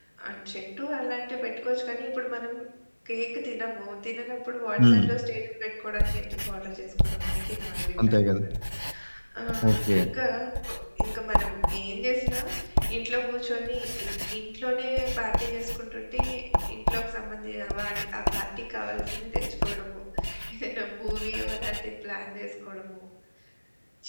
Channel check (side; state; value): both; inverted; correlation -1.00